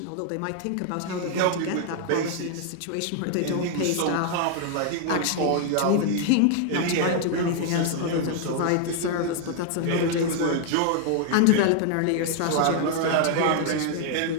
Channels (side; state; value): both; different; correlation 0.00